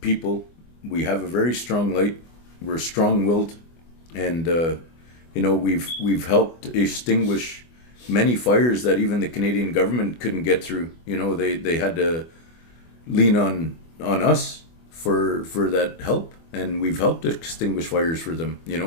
people. We have a very strong light. We're strong-willed, and we've helped extinguish many fires that even the Canadian government couldn't get through. They had to lean on us for that help, and we've helped extinguish fires for them.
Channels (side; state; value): right; late; 24 ms